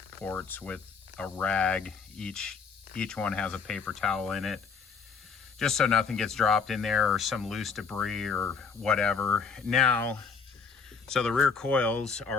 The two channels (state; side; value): quieter; right; 5.5 dB